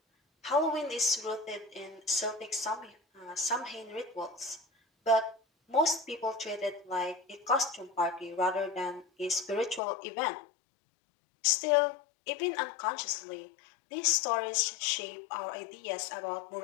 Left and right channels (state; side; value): drops out; right; at 9.8 s